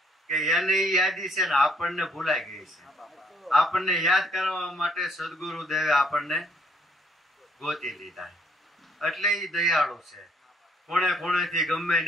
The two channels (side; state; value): both; normal; correlation 0.66